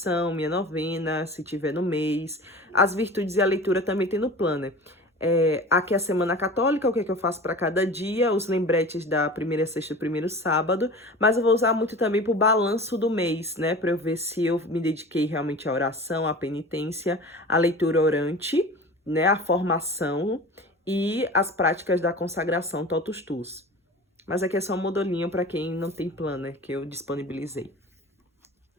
minha novena, se tiver no mês. As virtudes e a leitura também tem no planner. Aqui é a Semana Católica, o que é que eu faço para cada dia, os lembretes da primeira sexta e primeiro sábado, mas eu vou usar muito também para o balanço do mês, né, para eu ver se eu me dediquei realmente à oração, à penitência, à leitura orante, né, à formação e as práticas da consagração Totus Tuus. Mas aqui é só um modelinho para quem não tem planner que eu disponibilizei.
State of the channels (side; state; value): both; normal; correlation 0.37